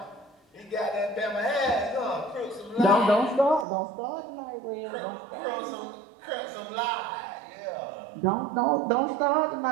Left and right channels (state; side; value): drops out; left; at 3.7 s